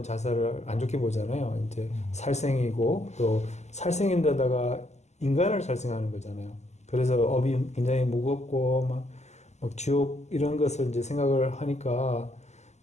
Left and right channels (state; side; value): late; right; 0.33 ms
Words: 자살을 안 좋게 보잖아요. 이제 살생이고, 또 살생인데다가 인간을 살생하는 거잖아요. 그래서 업이 굉장히 무겁고, 막 지옥 이런 것을 이제 생각을 하니까,